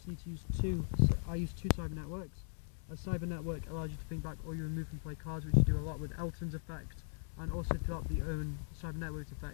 need to use I use 2 Cyber Networks. A Cyber Network allows you to bring back all your remove from play cards, which you do a lot with Elton's effect, and also throughout the own Cyber Network's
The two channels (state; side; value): silent; right; 52 dB below the other